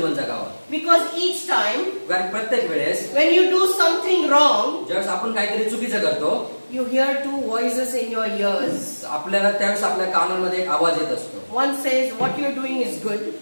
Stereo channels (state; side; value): inverted; both; correlation -1.00